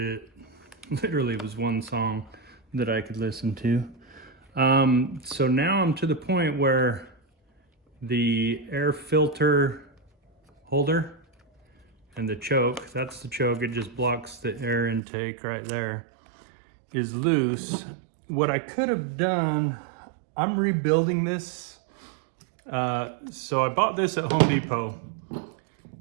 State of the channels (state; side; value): drops out; left; at 15.0 s